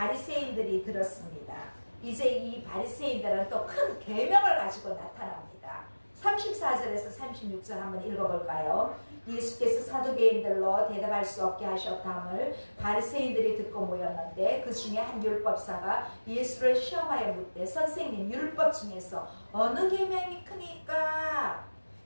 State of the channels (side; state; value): both; inverted; correlation -1.00